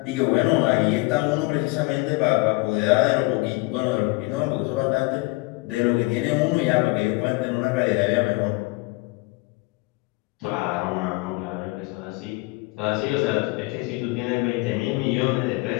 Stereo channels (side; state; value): right; quieter; 24.1 dB